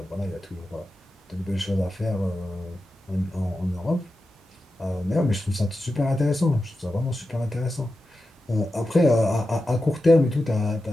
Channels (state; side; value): normal; both; correlation 0.91